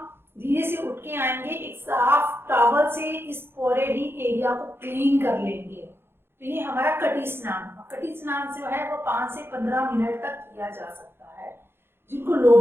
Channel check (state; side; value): late; left; 0.11 ms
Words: धीरे से उठ के आएंगे, एक साफ टॉवल से इस पूरे ही एरिया को क्लीन कर लेंगे। तो ये हमारा कटी स्नान। कटी स्नान से जो है वो 5 से 15 मिनट तक किया जा सकता है। जिनको लो